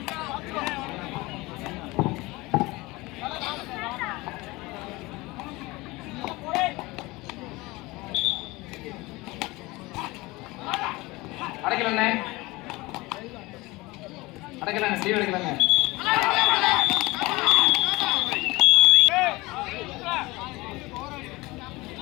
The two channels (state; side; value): quieter; right; 21.9 dB